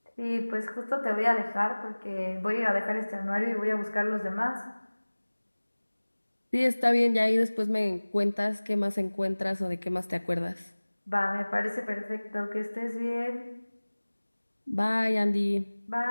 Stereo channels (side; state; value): both; inverted; correlation -1.00